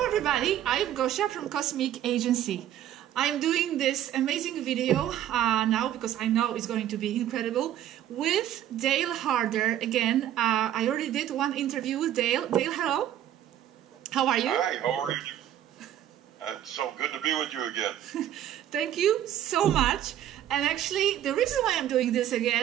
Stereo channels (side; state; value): left; quieter; 11.4 dB